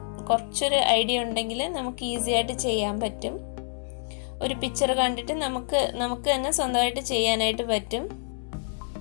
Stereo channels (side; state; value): right; silent; 60 dB below the other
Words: കുറച്ചൊരു ഐഡിയ ഉണ്ടെങ്കിൽ നമുക്ക് ഈസി ആയിട്ട് ചെയ്യാൻ പറ്റും. ഒരു പിക്ചർ കണ്ടിട്ട് നമുക്ക് തന്നെ സ്വന്തമായിട്ട് ചെയ്യാനായിട്ട് പറ്റും.